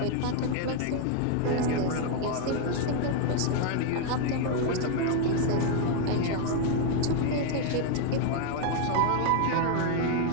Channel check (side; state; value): both; different; correlation 0.01